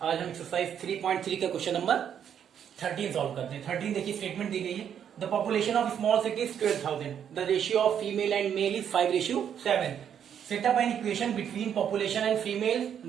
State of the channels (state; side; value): quieter; left; 8.7 dB